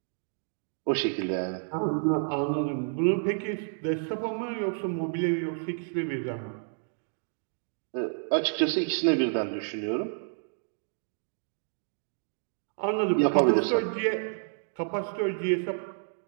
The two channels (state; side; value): silent; left; digital silence